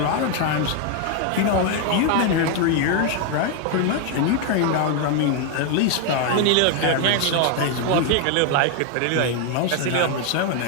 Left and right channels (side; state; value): both; different; correlation 0.01